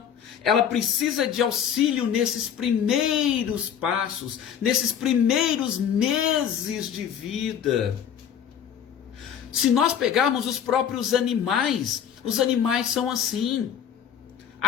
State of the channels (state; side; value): quieter; right; 8.7 dB